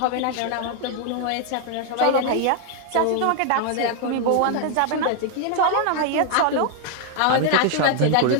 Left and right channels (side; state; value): both; different; correlation 0.00